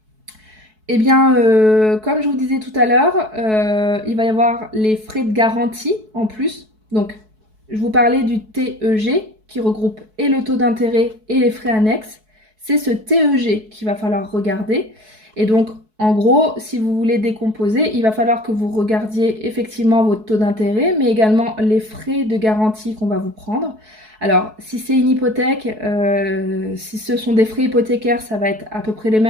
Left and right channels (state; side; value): late; left; 4.6 ms